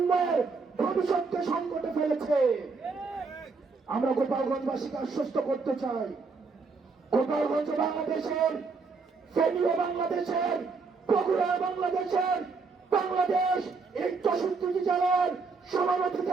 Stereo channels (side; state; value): left; quieter; 4.5 dB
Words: ভবিষ্যৎকে সংকটে ফেলেছে। আমরা গোপালগঞ্জবাসীকে আশ্বস্ত করতে চাই, গোপালগঞ্জ বাংলাদেশের, ফেনীও বাংলাদেশের, বগুড়া বাংলাদেশের, বাংলাদেশ এই 64টি জেলার সমান